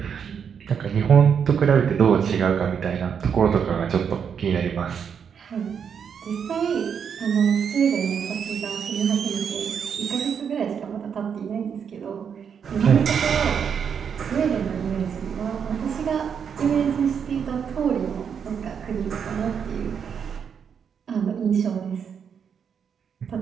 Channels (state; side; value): quieter; left; 7.2 dB